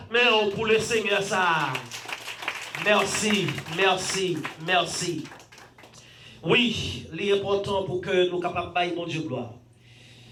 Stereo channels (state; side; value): identical; both; correlation 1.00